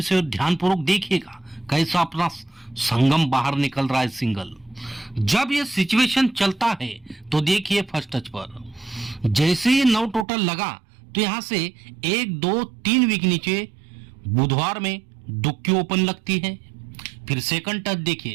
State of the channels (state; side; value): drops out; left; at 10.2 s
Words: से और ध्यानपूर्वक देखिएगा कैसा अपना संगम बाहर निकल रहा है सिंगल। जब ये सिचुएशन चलता है तो देखिए फर्स्ट टच पर जैसे ये 9 टोटल लगा तो यहां से 1 2 3 वीक नीचे बुधवार में दुक्की ओपन लगती है। फिर सेकंड टच